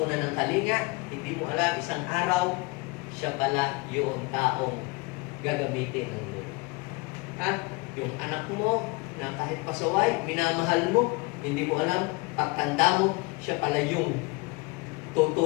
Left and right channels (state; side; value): quieter; right; 26.5 dB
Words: ng kalinga, hindi mo alam, isang araw, siya pala yung taong gagamitin ng Lord. Yung anak mo, na kahit pasaway, minamahal mo, hindi mo alam, pagtanda mo, siya pala yung